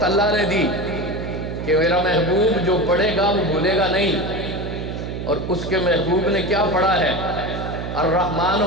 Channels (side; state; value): right; noise; hum, 6 dB below the sound